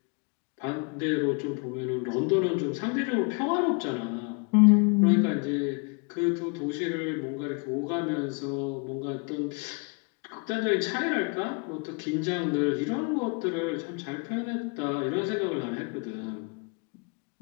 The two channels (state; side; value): quieter; right; 33.9 dB